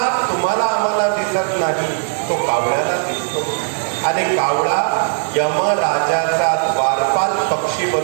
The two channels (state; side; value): silent; left; 65 dB below the other